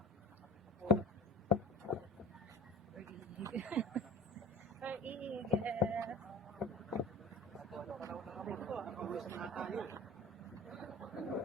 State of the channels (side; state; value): both; normal; correlation 0.39